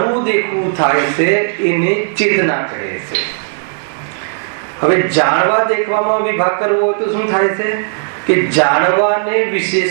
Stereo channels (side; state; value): left; silent; digital silence